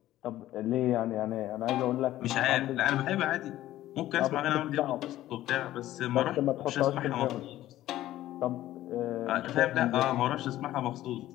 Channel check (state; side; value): quieter; right; 14.4 dB